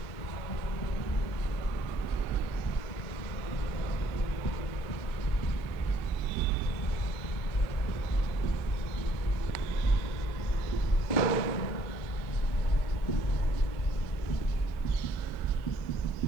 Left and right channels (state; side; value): late; right; 2.1 ms